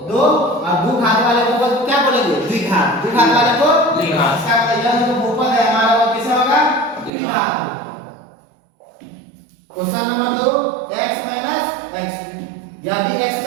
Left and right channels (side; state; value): left; drops out; at 7.1 s